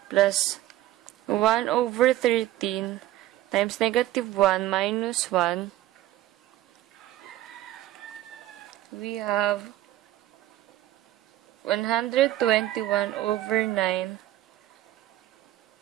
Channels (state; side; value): quieter; left; 14.7 dB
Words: plus 1 over 13 times negative 1 minus 1. We have 121 over 9